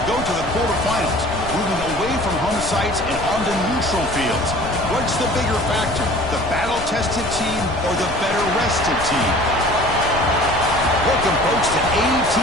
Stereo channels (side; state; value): left; noise; rumble, 10 dB below the sound